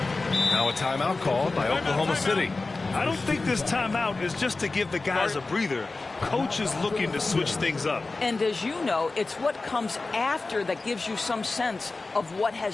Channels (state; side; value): quieter; right; 3.5 dB